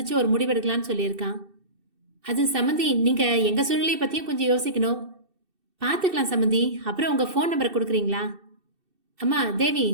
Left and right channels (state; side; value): late; left; 2.6 ms